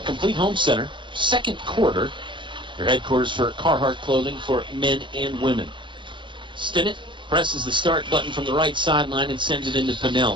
complete home center. Second quarter. Your headquarters for Carhartt clothing for men and women. Stinnett presses the start button from the right sideline and sends it into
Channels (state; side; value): late; left; 0.23 ms